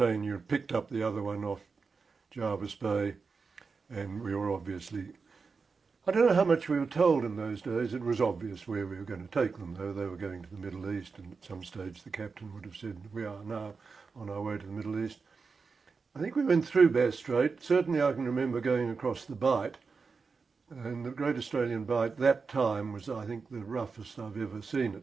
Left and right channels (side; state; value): left; quieter; 4.9 dB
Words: picked up the other one off Jervis Bay, and we were obviously, I don't know how much we were told in those days. It was obvious where we were going to take them, though. They were going to the Middle East, and at some stage the captain would have said, we are now on our way to the Middle East. I think we went through Bass Strait. Certainly I can remember going across the Bight, and the Great Australian Bight that time was, I think, the roughest I've ever seen